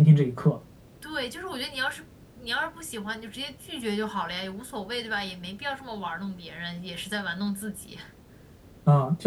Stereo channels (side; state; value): both; identical; correlation 1.00